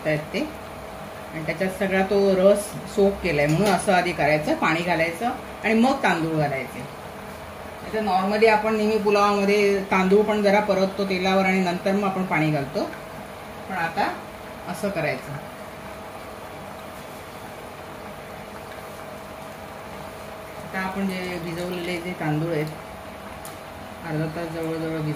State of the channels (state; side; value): identical; both; correlation 1.00